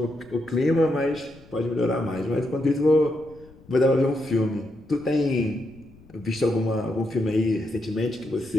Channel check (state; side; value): noise; left; rumble, 24 dB below the sound